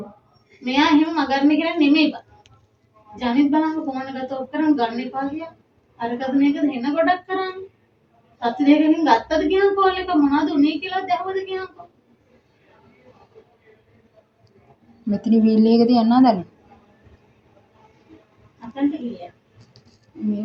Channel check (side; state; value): both; identical; correlation 1.00